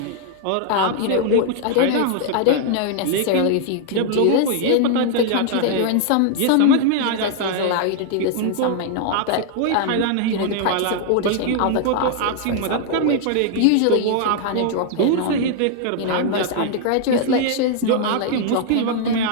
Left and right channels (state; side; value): different; both; correlation 0.00